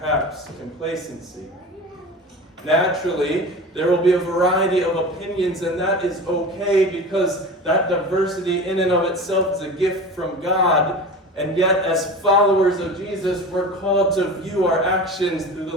complacency? Naturally, there will be a variety of opinions, and that is okay, because that diversity in and of itself is a gift from God. And yet, as followers of Jesus, we're called to view our actions through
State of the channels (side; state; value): both; normal; correlation 0.33